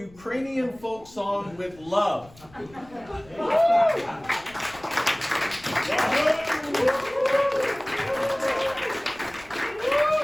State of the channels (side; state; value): left; noise; rumble, 24 dB below the sound